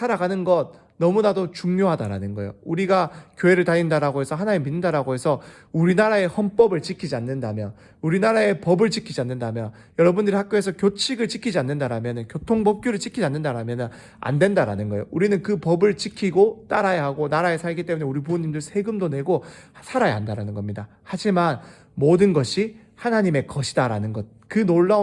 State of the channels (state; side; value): identical; both; correlation 1.00